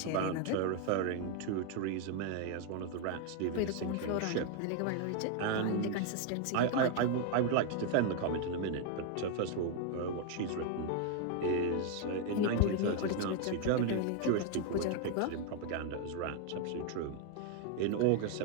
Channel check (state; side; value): different; both; correlation 0.00